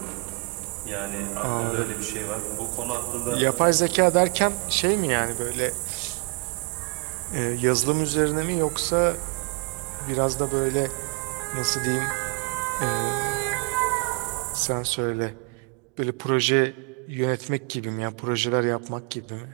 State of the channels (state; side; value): quieter; left; 33.9 dB